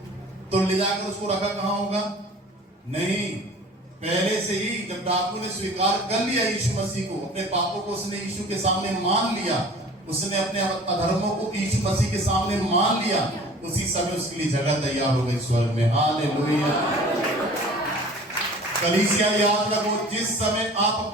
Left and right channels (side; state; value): both; normal; correlation 0.45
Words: तो ले जाकर उसको रखा कहां होगा? नहीं, पहले से ही जब डाकू ने स्वीकार कर लिया यीशु मसीह को, अपने पापों को उसने यीशु के सामने मान लिया, उसने अपने अधर्मों को यीशु मसीह के सामने मान लिया, उसी समय उसके लिए जगह तैयार हो गई स्वर्ग में। हालेलुया। कलीसिया याद रखो, जिस समय आप